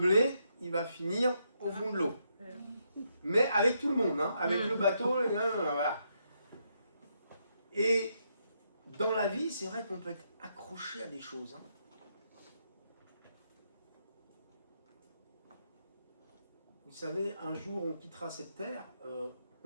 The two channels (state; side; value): inverted; both; correlation -0.78